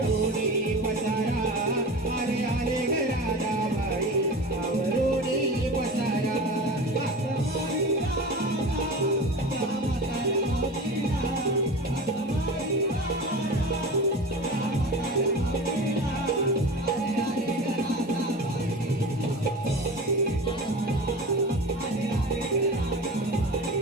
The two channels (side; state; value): both; normal; correlation 0.31